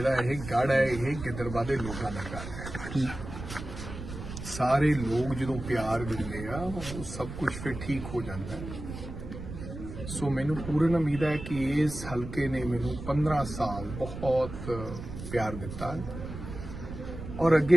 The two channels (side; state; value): right; noise; rumble, 9 dB below the sound